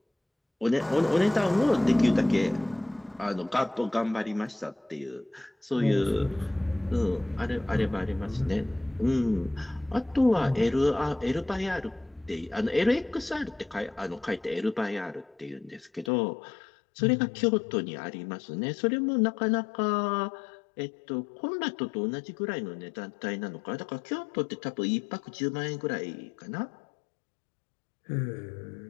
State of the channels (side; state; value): right; drops out; at 16.1 s